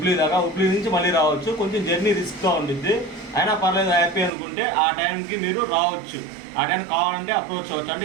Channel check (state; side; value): drops out; left; at 4.3 s